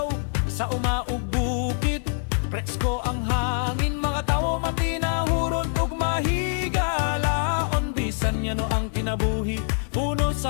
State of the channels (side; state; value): right; silent; 62 dB below the other